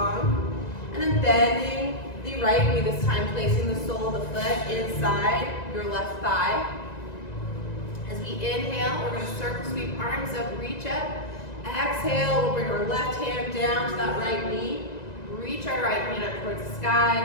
And then bending the right knee this time, placing the sole of the foot inside your left thigh. As we inhale, we're going to circle sweep arms up, reach up. Exhale, we'll bring our left hand down to that right knee. Reach our right hand up towards the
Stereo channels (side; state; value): right; late; 1.9 ms